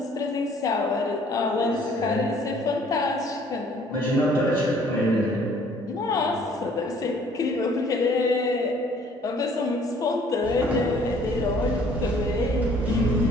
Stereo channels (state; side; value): normal; both; correlation 0.58